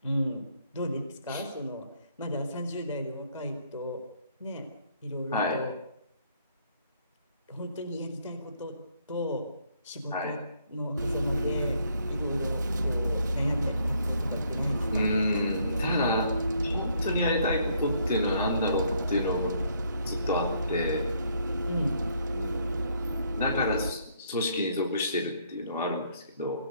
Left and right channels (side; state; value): both; inverted; correlation -0.68